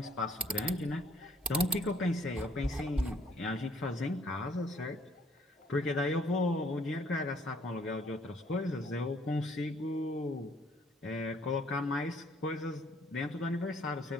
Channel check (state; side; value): normal; both; correlation 0.63